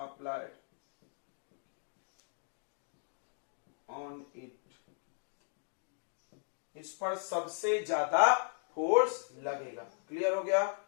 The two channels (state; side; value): silent; right; 53 dB below the other